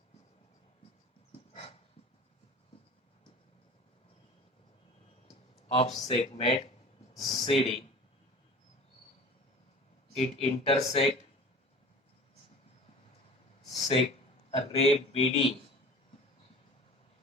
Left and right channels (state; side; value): normal; both; correlation 0.40